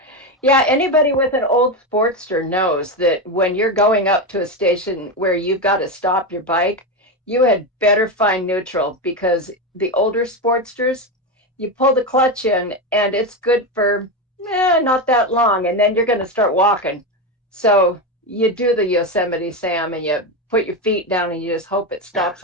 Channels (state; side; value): normal; both; correlation 0.14